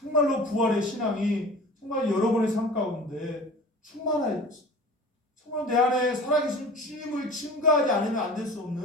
부활의 신앙이 정말 여러분의 삶 가운데 충만해야 돼요. 정말 내 안에 살아계신 주님을 증거하지 않으면 안 될 수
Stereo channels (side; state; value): both; normal; correlation 0.39